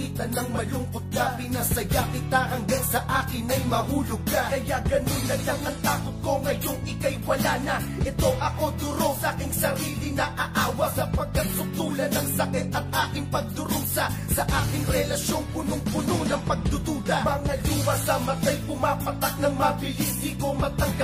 ng malungkot ka, pinasaya kita hanggang sa akin ay mahulog ka. Kaya ganun na lang ang takot ko ngayong ika'y wala na. Ito ako duro sa aking sarili na aawa, sapagkat suktulan ng sakit at aking pagdurusa sa aking relasyong punong-puno ng pagdududa. Mga luha sa mata'y pumapatak ng mabilis, di ko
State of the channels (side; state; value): both; identical; correlation 1.00